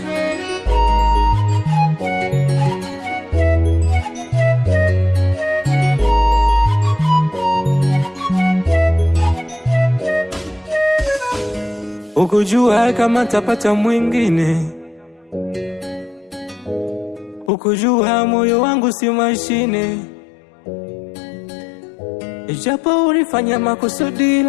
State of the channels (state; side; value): drops out; right; at 17.5 s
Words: Ukujua kama tapata mwingine, ukujua moyo wangu si mashine. Ijapo ulifanya makusudi